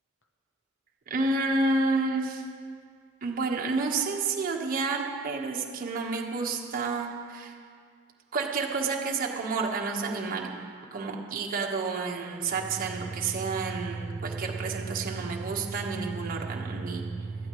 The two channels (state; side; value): quieter; left; 3.3 dB